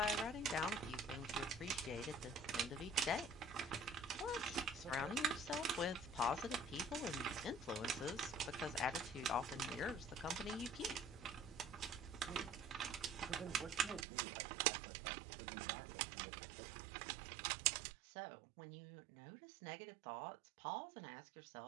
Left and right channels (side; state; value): left; drops out; at 14.1 s